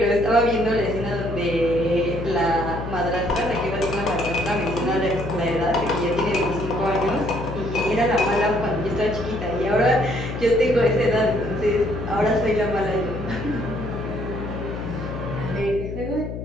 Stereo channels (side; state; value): left; noise; hum, 7 dB below the sound